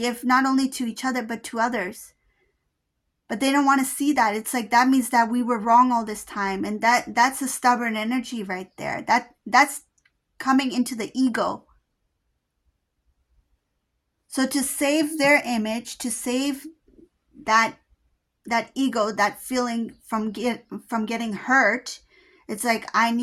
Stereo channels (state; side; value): identical; both; correlation 1.00